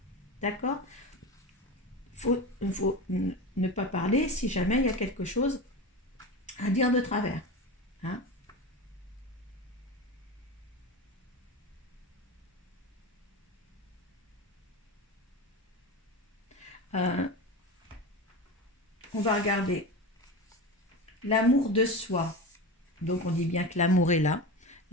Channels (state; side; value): normal; both; correlation 0.25